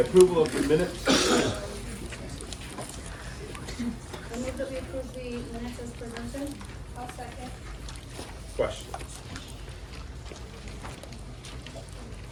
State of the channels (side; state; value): both; identical; correlation 1.00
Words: of the minutes. I move that we approve the minutes as presented. I'll second. Questions?